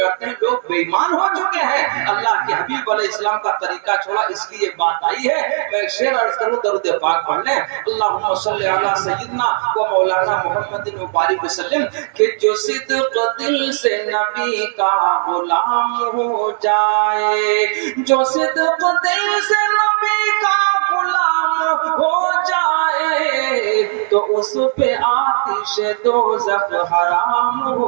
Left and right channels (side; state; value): left; silent; digital silence